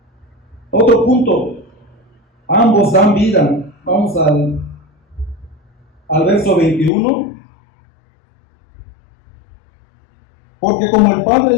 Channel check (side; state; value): right; drops out; at 6.9 s